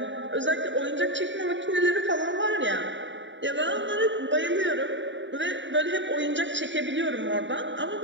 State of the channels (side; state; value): left; late; 0.54 ms